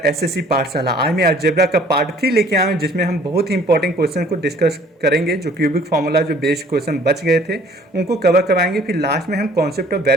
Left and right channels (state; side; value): normal; both; correlation 0.55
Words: SSC Pathshala. आज मैं algebra का part 3 लेके आया हूँ, जिसमें हम बहुत ही इंपॉर्टेंट क्वेश्चन को डिस्कस करेंगे। जो क्यूबिक फार्मूला जो बेस्ड क्वेश्चन बच गए थे उनको कवर करवाएंगे। फिर लास्ट में हम कॉन्सेप्ट ऑफ